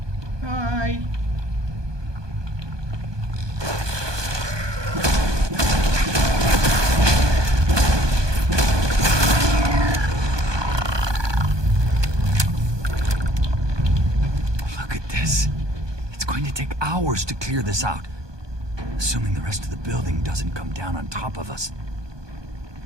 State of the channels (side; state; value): left; late; 1.2 ms